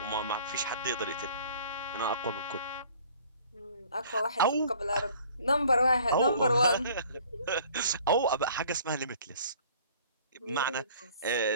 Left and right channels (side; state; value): both; inverted; correlation -0.53